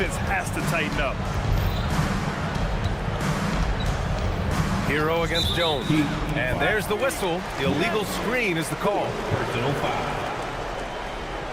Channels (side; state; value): both; identical; correlation 1.00